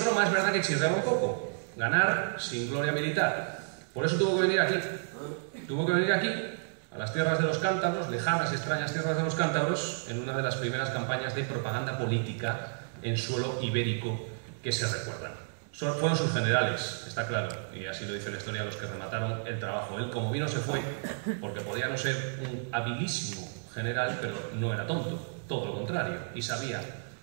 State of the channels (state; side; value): silent; left; digital silence